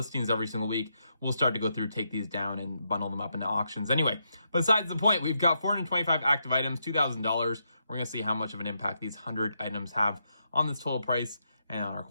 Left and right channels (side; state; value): both; inverted; correlation -0.81